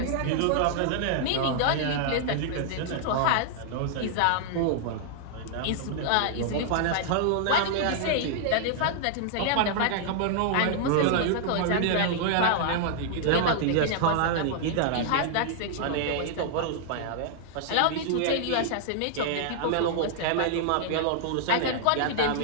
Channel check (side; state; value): both; different; correlation -0.01